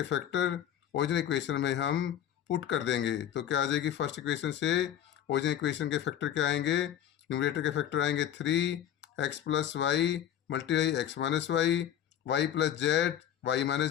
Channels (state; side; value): quieter; right; 10.4 dB